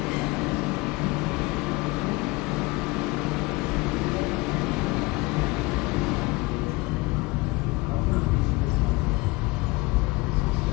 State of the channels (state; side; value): quieter; right; 23.8 dB